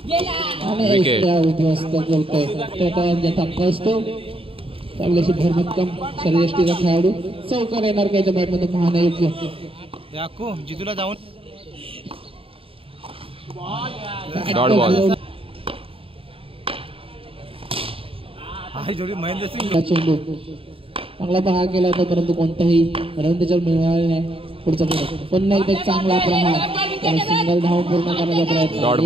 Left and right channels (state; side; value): late; left; 0.27 ms